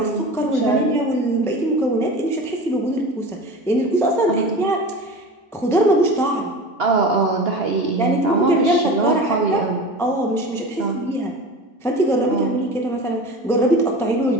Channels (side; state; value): both; normal; correlation 0.33